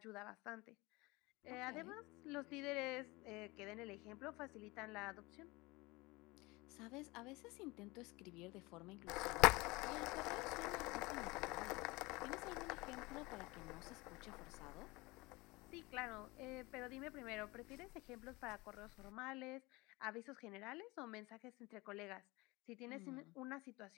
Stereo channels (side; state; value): right; quieter; 23.3 dB